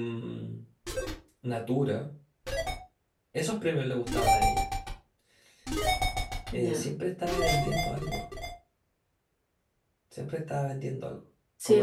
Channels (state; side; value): identical; both; correlation 1.00